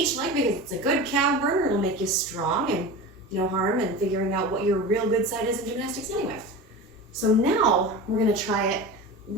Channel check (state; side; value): normal; both; correlation 0.30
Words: leg because it's a good calf burner. It'll make you strong and no harm in figuring out what your real good side is in gymnastics anyway. So now we're gonna try it